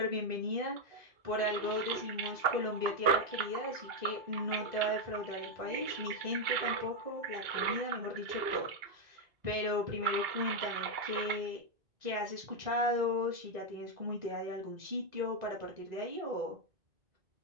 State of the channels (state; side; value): late; left; 2.8 ms